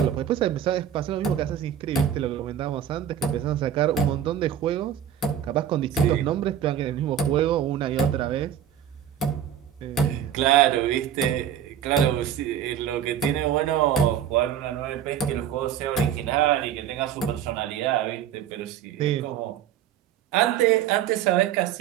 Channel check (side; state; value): left; quieter; 9.8 dB